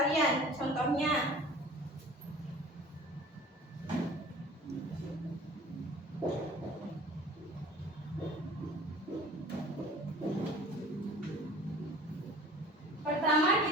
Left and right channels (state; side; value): normal; both; correlation 0.44